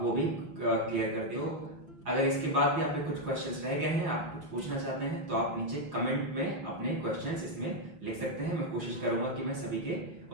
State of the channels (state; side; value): late; left; 5.6 ms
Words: वो भी क्लियर कर दिए हो। अगर इसके बाद भी आपके कुछ क्वेश्चंस रह गए हैं, आप कुछ पूछना चाहते हैं, तो आप नीचे कमेंट में अपने क्वेश्चंस इसमें लिख सकते हैं। मैं कोशिश करूंगा कि मैं सभी के